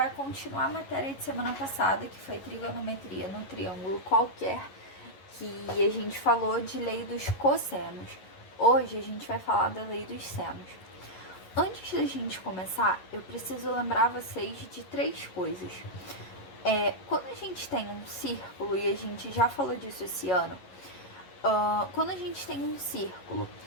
continuar a matéria de semana passada, que foi trigonometria no triângulo qualquer, que a gente falou de lei dos cossenos. Hoje a gente vai falar da lei dos senos. Antes da gente começar, eu preciso lembrar vocês de três coisas. Quando a gente tem um círculo, e a gente já falou disso esse ano, quando a gente tem um círculo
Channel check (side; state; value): right; late; 11 ms